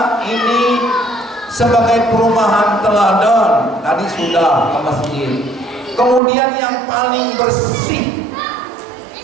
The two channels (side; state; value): left; drops out; at 6.2 s